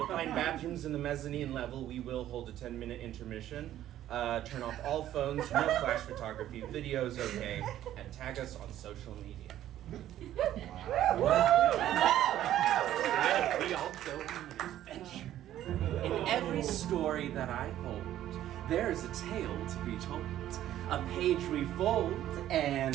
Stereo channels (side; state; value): left; quieter; 12.5 dB